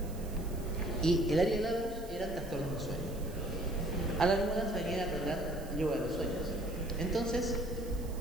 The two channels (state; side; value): noise; right; hiss, 19 dB below the sound